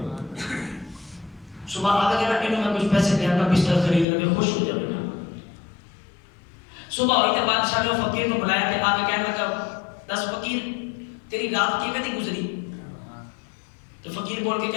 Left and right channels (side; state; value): right; drops out; at 4.0 s